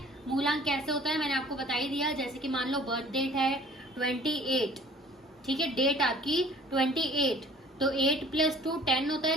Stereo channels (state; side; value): normal; both; correlation 0.50